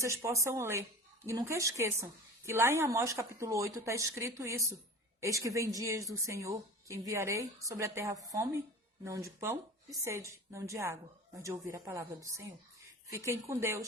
possam ler. E nunca esqueçam que lá em Amós capítulo 8 está escrito isso. Eis que vem dias do Senhor, que enviarei sobre a terra fome, não de pão e sede, não de água, mas de ouvir a palavra do Senhor. Fiquem com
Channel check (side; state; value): both; normal; correlation 0.36